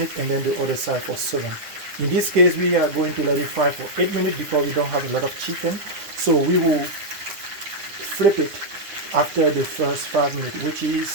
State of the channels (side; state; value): left; late; 9.6 ms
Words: and then the other side for 7. In this case, we are going to let it fry for 8 minutes because we don't have a lot of chicken. So we will flip it after the first 5 minutes, which